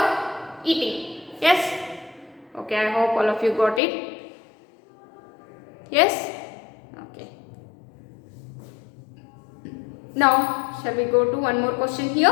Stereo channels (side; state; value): right; drops out; at 3.8 s